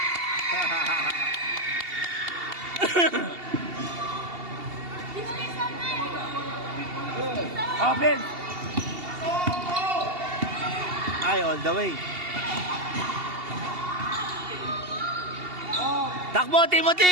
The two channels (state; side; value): late; left; 2.7 ms